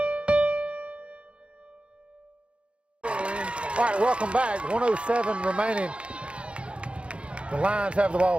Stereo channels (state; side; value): late; left; 0.059 ms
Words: All right, welcome back. 1:07 remaining. The Lions have the